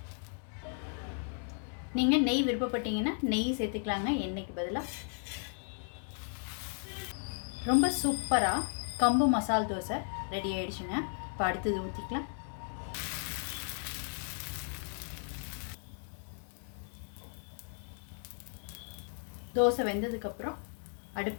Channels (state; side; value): silent; right; 54 dB below the other